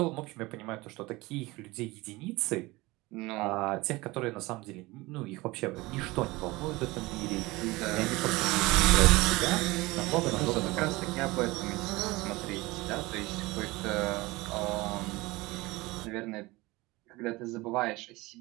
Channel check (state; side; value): quieter; left; 21.5 dB